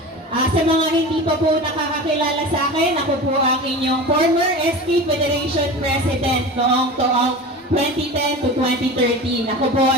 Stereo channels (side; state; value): both; normal; correlation 0.32